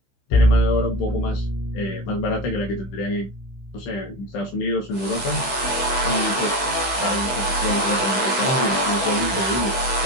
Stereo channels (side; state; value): right; late; 15 ms